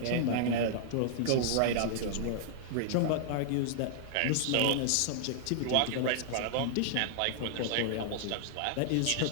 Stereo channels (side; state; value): both; different; correlation -0.01